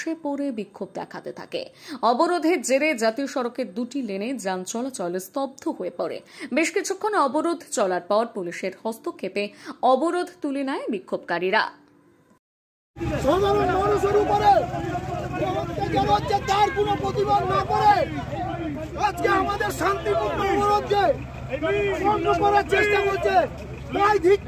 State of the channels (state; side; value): identical; both; correlation 1.00